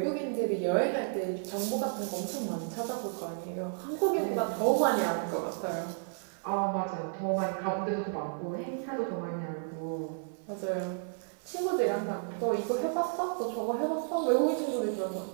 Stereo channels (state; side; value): silent; left; digital silence